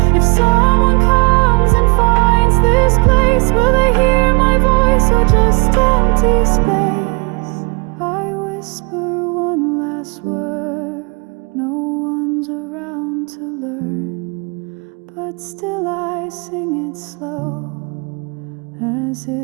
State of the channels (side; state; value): left; quieter; 31.8 dB